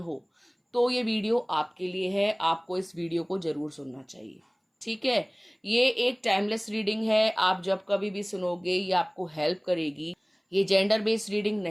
हो, तो ये वीडियो आपके लिए है। आपको इस वीडियो को जरूर सुनना चाहिए। ठीक है। ये एक टाइमलेस रीडिंग है। आप जब कभी भी सुनोगे ये आपको हेल्प करेगी। ये जेंडर बेस्ड रीडिंग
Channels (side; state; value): both; identical; correlation 1.00